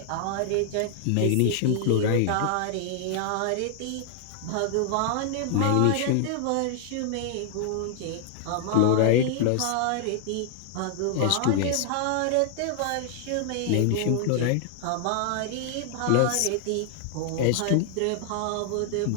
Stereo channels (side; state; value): both; different; correlation 0.00